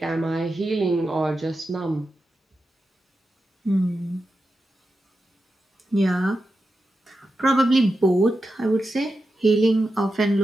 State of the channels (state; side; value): normal; both; correlation 0.90